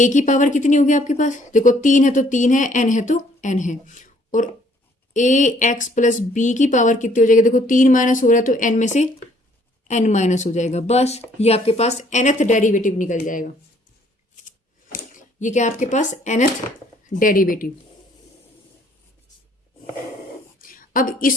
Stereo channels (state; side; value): normal; both; correlation 0.62